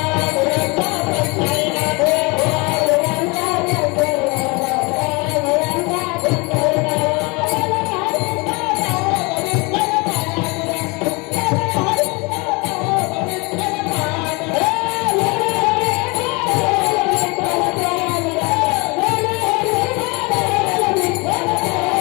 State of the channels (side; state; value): right; quieter; 27.9 dB